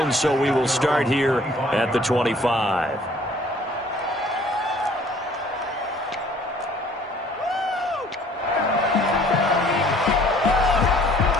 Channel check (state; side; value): normal; both; correlation 0.56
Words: so we will start here at the 25.